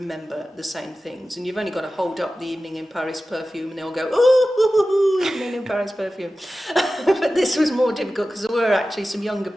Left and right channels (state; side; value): normal; both; correlation 0.95